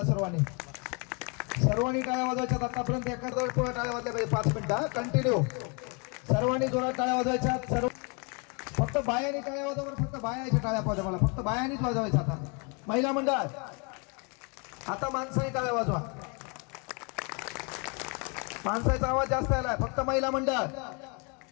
सर्वांनी. सर्वांनी टाळ्या वाजवायच्यात. आतापर्यंत एका टाळ्या वाजल्या पाहिजे 5 मिनिटं कंटिन्यू. सर्वांनी जोरात टाळ्या वाजवायच्या. सर्व फक्त बायांनी टाळ्या वाजवा. फक्त बायाच्या टाळ्या पाहिजे मला. फक्त बायांनीच वाजवायच्या. आता महिला मंडळ आता माणसाने टाळ्या वाजवा. माणसाचा आवाज जास्त आलाय. फक्त महिला मंडळ.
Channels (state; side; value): quieter; right; 33.6 dB